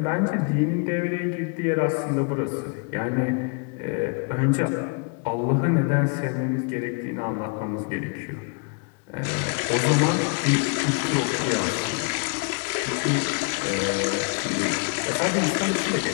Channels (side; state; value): right; quieter; 34.3 dB